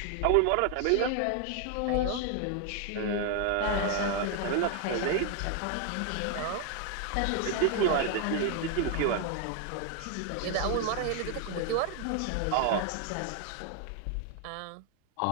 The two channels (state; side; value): different; both; correlation 0.00